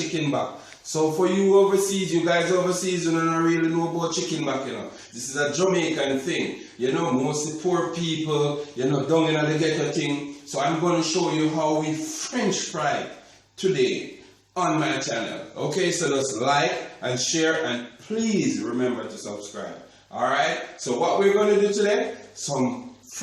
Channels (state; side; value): identical; both; correlation 1.00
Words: back. So for you overseas, you guys overseas, you don't really know about chicken back, you know. This is a Jamaican thing, you know, mostly poor people, you know, down in the ghetto thing. So I'm gonna show you how we French fry today on my channel. Okay, so just like and share, and please remember to subscribe. Alright, so what we're going to do today, some